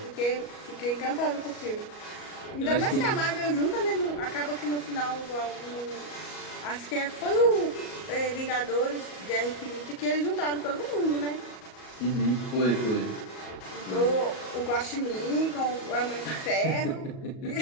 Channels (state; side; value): late; right; 38 ms